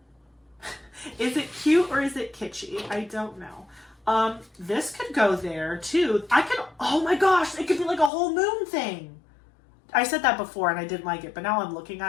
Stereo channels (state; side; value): drops out; right; at 8.1 s